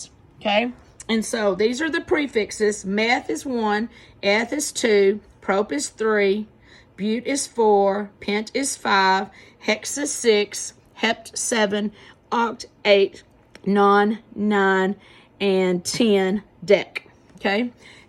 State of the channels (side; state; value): both; identical; correlation 1.00